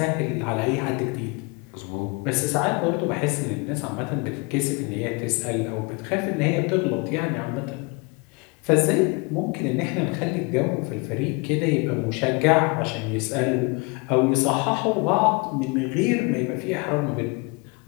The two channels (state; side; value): quieter; right; 29.1 dB